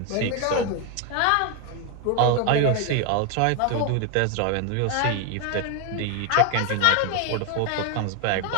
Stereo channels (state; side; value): different; both; correlation 0.01